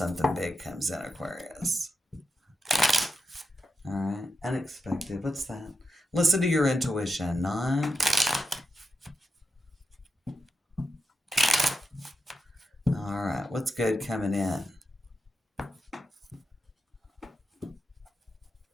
big comes in, Aquarius. All right. Unexpected. What's that? Listen to your intuition. 9. All right. What's good coming in?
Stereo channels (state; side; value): normal; both; correlation 0.87